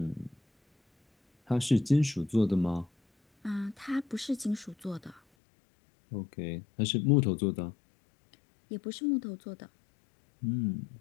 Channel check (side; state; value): right; drops out; at 5.2 s